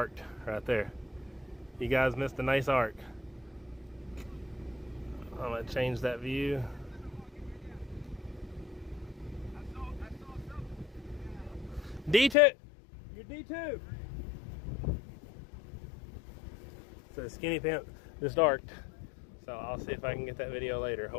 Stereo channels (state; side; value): drops out; right; at 12.4 s